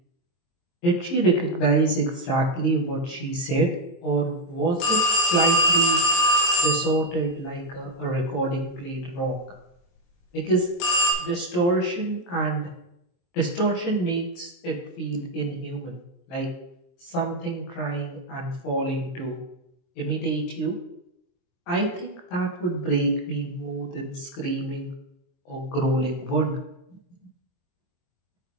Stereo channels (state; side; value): late; right; 23 ms